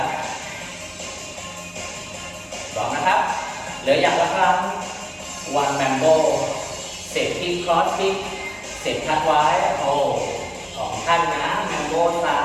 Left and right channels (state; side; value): identical; both; correlation 1.00